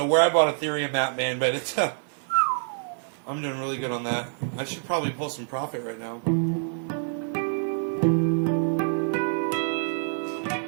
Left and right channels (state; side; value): silent; left; digital silence